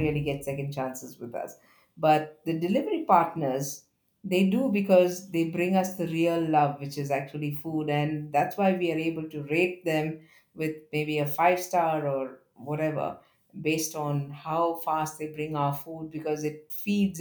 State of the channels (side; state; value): both; identical; correlation 1.00